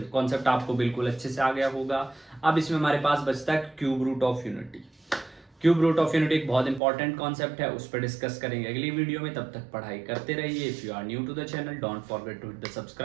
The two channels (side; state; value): left; drops out; at 6.8 s